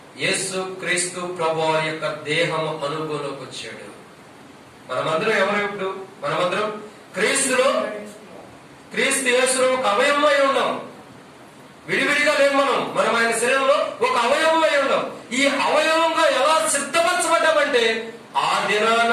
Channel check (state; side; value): identical; both; correlation 1.00